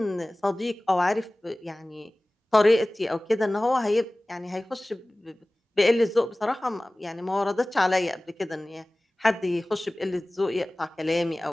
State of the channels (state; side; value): normal; both; correlation 0.98